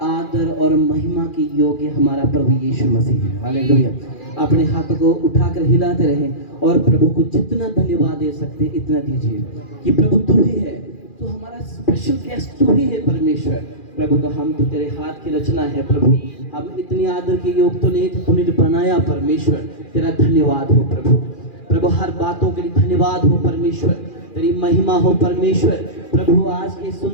आदर और महिमा की योग्य हमारा प्रभु यीशु मसीह है। हालेलुया। अपने हाथों को उठाकर हिलाते रहें और प्रभु को जितना धन्यवाद दे सकते इतना दीजिए कि प्रभु तू ही है, तू हमारा स्पेशल गेस्ट तू ही है परमेश्वर। प्रभु तो हम तो तेरे हाथ की रचना है प्रभु, हम इतनी आदर के योग तो नहीं थे, तूने तो बनाया परमेश्वर। तेरा धन्यवाद हो प्रभु। प्रभु हर बातों के लिए धन्यवाद हो परमेश्वर, तेरी महिमा हो परमेश्वर। प्रभु आज के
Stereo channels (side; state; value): right; late; 2.4 ms